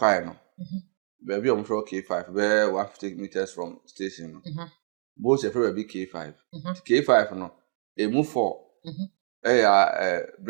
no be bi omfro K5 be 150 meters from station no bo se free be K5 K5 no emu 4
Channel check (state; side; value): silent; left; digital silence